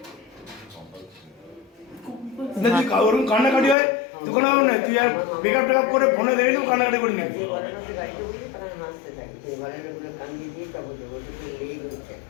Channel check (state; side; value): drops out; right; at 3.8 s